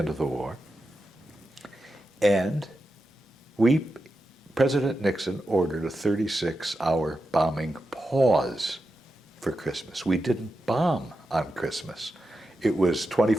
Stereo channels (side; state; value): both; normal; correlation 0.89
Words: of the war. And President Nixon ordered a 36-hour bombing pause for Christmas. We didn't bomb on Christmas. It was